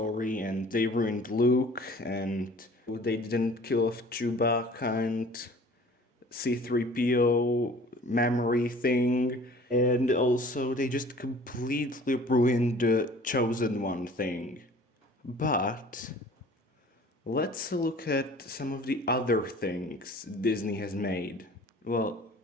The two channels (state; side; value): normal; both; correlation 0.48